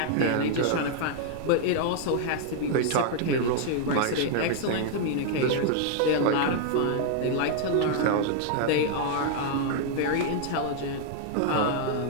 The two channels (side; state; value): both; different; correlation 0.00